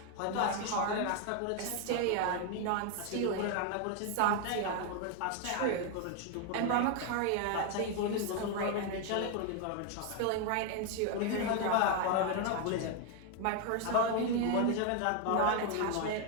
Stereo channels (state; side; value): different; both; correlation 0.01